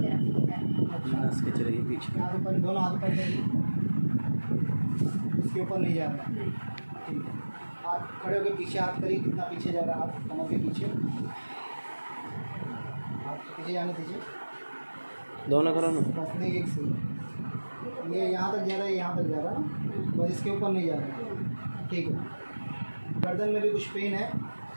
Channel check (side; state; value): both; inverted; correlation -1.00